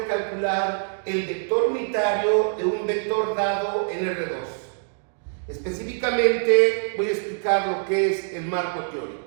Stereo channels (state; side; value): silent; left; digital silence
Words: calcular el vector unitario de un vector dado en R2. Específicamente voy a explicar lo que es el marco